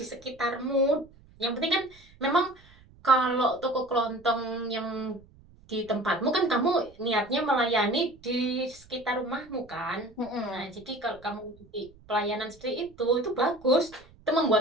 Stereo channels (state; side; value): noise; right; rumble, 26 dB below the sound